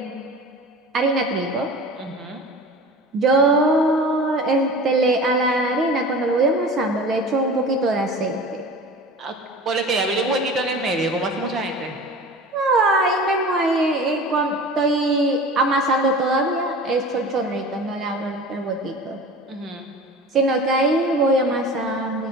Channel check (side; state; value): both; normal; correlation 0.37